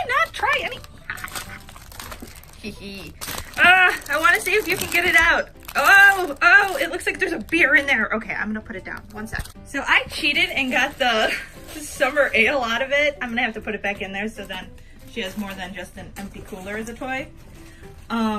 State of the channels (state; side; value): identical; both; correlation 1.00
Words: not try any? I want to see if you can get it out. Oh, it looks like there's a beer in there. Okay, I'm gonna put it down. One sec. So I cheated and got the summer ale out of it. I'm gonna have to put it back in there so then she has more than just an empty cooler as a toy.